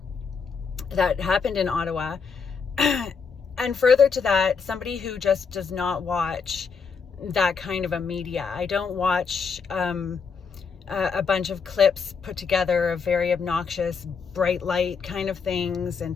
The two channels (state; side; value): quieter; right; 5.7 dB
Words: happened in Ottawa, and further to that, somebody who just does not watch that kind of a media. I don't watch a bunch of clips put together of very obnoxious, bright light kind of things